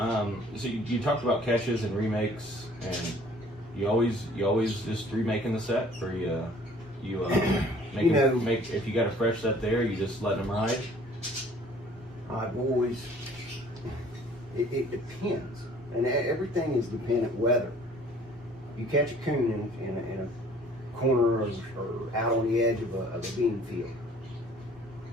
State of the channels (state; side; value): normal; both; correlation 0.54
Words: So you talked about catches and remakes, and you always just remaking the set, or make if you got a fresh set there, you just let them ride. I've always, it depends, and everything is dependent weather. You catch a coon in a corner or out on the edge of a bean field,